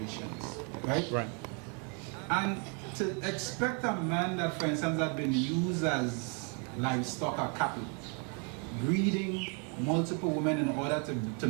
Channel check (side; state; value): left; quieter; 36.5 dB